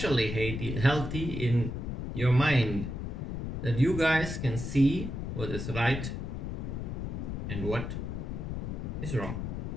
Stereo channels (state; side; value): noise; left; rumble, 4 dB below the sound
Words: healthy in your mind, that you guys can see what is right and what is wrong.